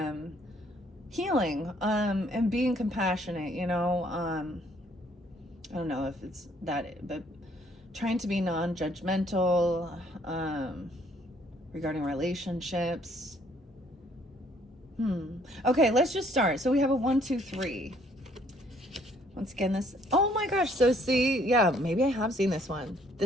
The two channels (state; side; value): normal; both; correlation 0.64